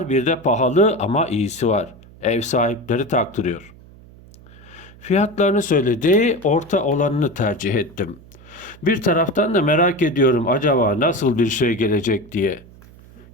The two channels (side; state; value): right; noise; hum, 22 dB below the sound